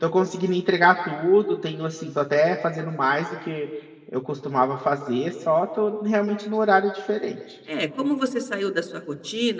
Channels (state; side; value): identical; both; correlation 1.00